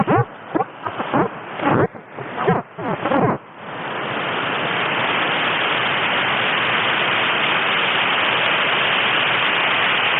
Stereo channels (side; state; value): both; identical; correlation 1.00